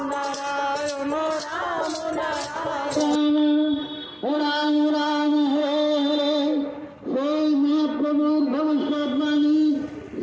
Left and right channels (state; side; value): identical; both; correlation 1.00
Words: নারায়ণ রাম নারায়ণ রাম রাম হরে হরে। সেই মহাপ্রভুর ভবিষ্যৎবাণী